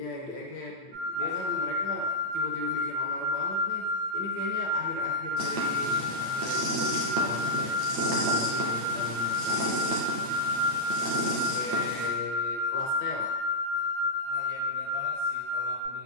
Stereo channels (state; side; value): late; left; 8.9 ms